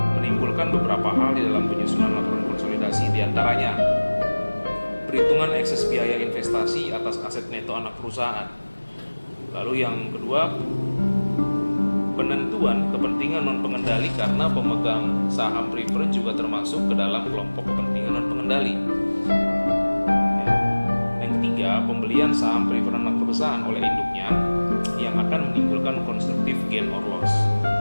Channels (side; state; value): both; inverted; correlation -1.00